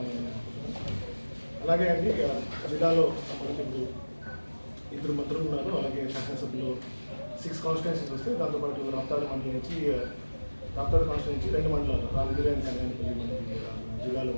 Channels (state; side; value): inverted; both; correlation -1.00